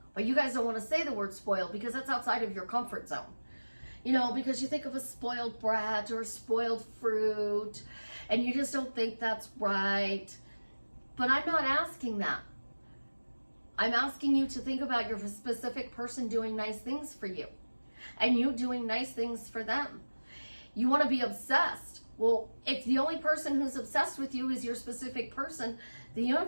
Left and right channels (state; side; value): inverted; both; correlation -1.00